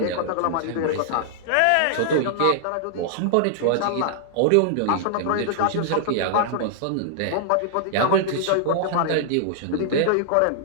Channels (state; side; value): different; both; correlation -0.01